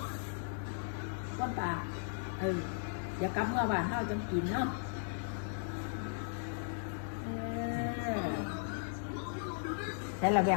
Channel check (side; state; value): right; silent; digital silence